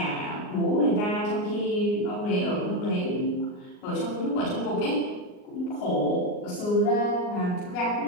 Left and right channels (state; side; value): late; right; 38 ms